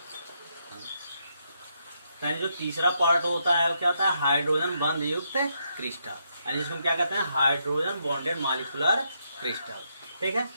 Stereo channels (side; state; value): both; inverted; correlation -0.79